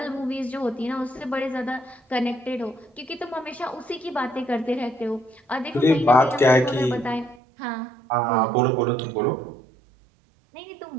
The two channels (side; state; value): left; drops out; at 7.4 s